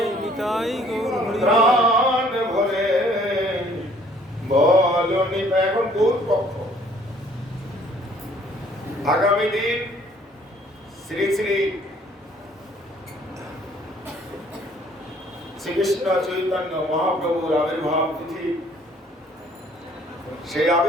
নিতাই, প্রাণ ভরে বলো নিতাই। এখন গৌর পক্ষ। আগামী দিন শ্রী শ্রী শ্রীকৃষ্ণ চৈতন্য মহাপ্রভুর আবির্ভাব তিথি। সেই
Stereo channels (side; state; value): both; normal; correlation 0.59